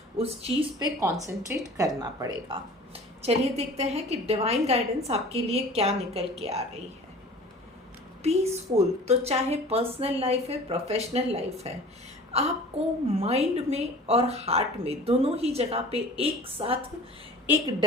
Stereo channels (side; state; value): both; normal; correlation 0.42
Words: उस चीज़ पे कंसंट्रेट करना पड़ेगा। चलिए देखते हैं कि डिवाइन गाइडेंस आपके लिए क्या निकल के आ रही है। पीसफुल, तो चाहे पर्सनल लाइफ है, प्रोफेशनल लाइफ है, आपको माइंड में और हार्ट में, दोनों ही जगह पे एक साथ एक